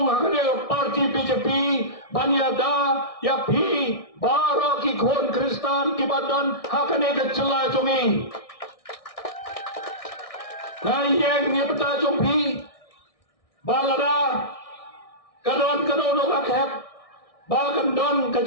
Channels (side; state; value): right; late; 1.6 ms